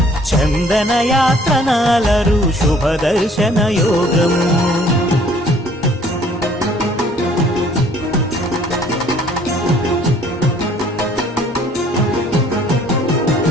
చందన యాత్రనాలరు శుభదర్శన యోగము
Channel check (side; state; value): both; normal; correlation 0.58